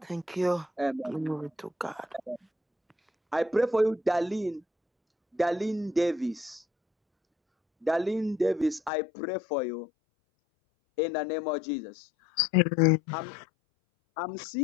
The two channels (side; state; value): right; drops out; at 8.9 s